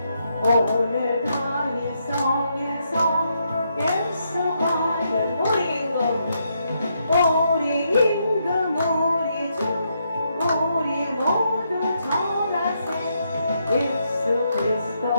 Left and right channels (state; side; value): inverted; both; correlation -0.78